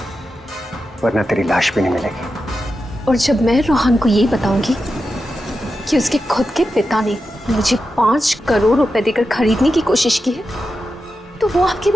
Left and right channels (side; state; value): both; normal; correlation 0.90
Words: वरना तेरी लाश भी नहीं मिलेगी। और जब मैं रूहान को ये बताऊंगी कि उसके खुद के पिता ने मुझे 5 करोड़ रुपए देकर खरीदने की कोशिश की है, तो वो आपके